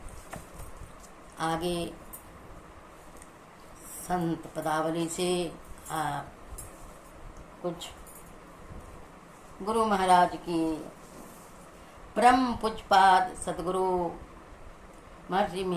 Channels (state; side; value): identical; both; correlation 1.00